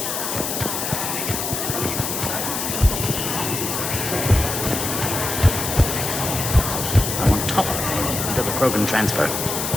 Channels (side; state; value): left; noise; hiss, 3 dB below the sound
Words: I'm on top until the Krogan transfer.